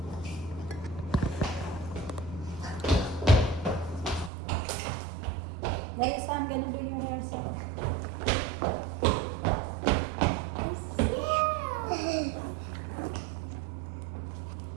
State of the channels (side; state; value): left; drops out; at 4.3 s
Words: Guys, I'm gonna do your hair so.